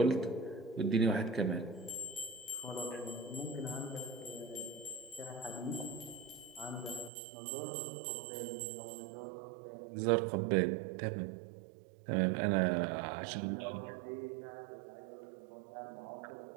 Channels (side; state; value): left; drops out; at 7.1 s